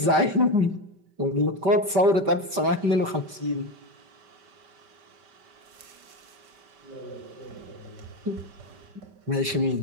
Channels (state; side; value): late; left; 5.1 ms